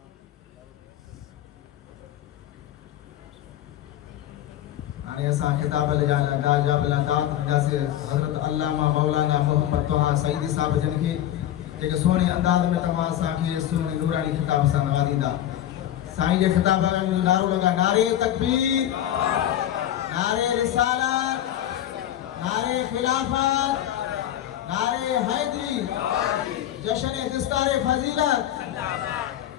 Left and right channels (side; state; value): right; quieter; 11.9 dB